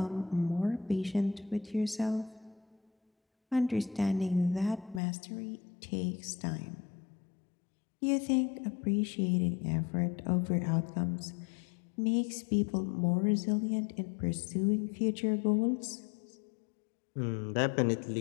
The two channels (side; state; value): right; drops out; at 5.0 s